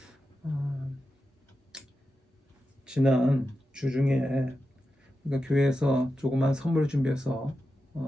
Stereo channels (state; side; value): normal; both; correlation 0.90